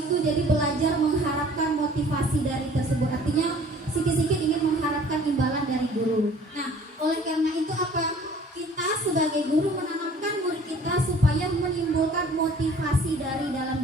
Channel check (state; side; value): normal; both; correlation 0.52